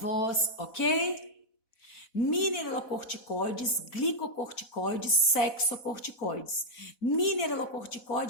ok? Mineralocorticoides, glicocorticoides, sexocorticoides.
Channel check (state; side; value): late; right; 4.1 ms